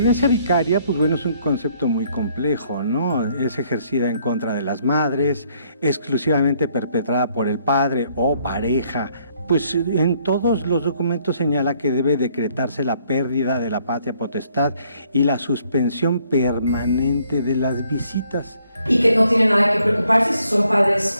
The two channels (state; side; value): inverted; both; correlation -0.67